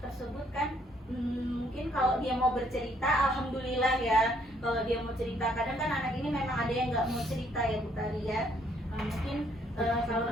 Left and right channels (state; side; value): normal; both; correlation 0.67